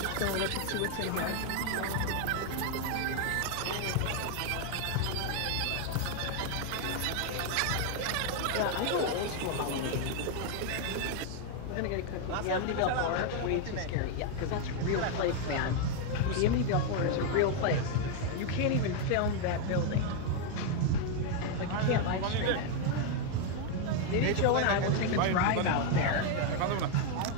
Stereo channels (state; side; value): different; both; correlation 0.01